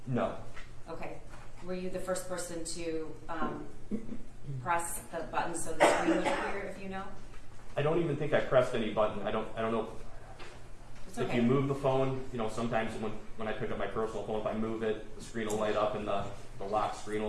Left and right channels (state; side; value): identical; both; correlation 1.00